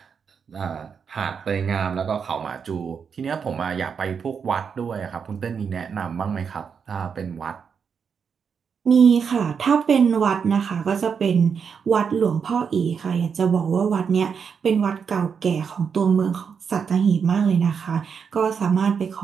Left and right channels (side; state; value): left; quieter; 6.5 dB